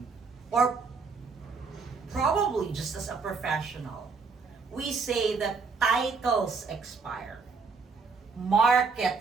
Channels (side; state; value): left; quieter; 4.8 dB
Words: Or probably just as a professional, we say that titles expire,